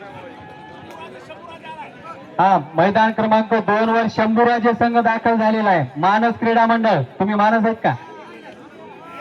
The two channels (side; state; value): both; identical; correlation 1.00